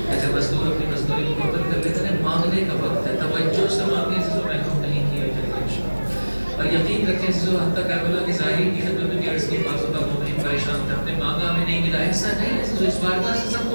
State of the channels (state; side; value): inverted; both; correlation -1.00